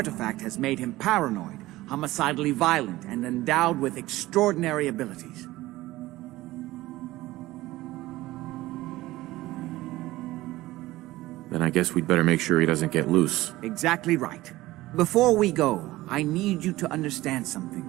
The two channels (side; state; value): left; quieter; 17.6 dB